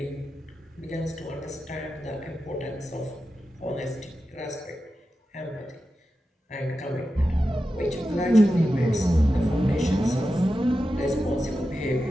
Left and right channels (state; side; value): normal; both; correlation 0.91